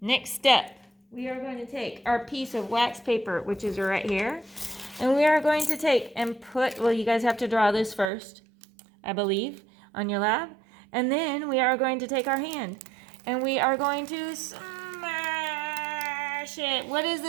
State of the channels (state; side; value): drops out; left; at 8.1 s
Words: step. We are going to take our piece of wax paper, which is right here, and we are going to take and put, well, you guys have to draw this first, I believe, on your lab. And then we are going to take our hand and we are going to smash it. What is